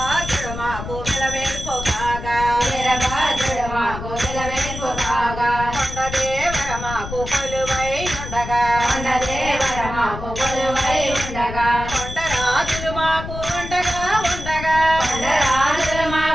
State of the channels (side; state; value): left; noise; rumble, 9 dB below the sound